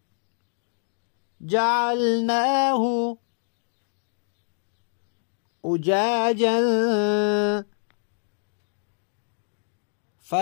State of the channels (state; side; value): silent; right; digital silence